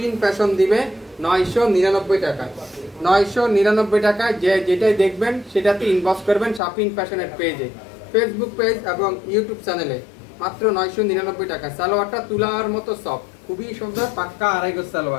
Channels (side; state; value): right; drops out; at 6.6 s